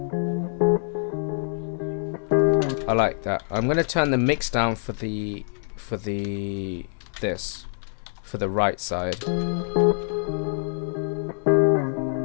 I like that. I'm gonna turn the mix down for the right side.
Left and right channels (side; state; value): right; silent; 62 dB below the other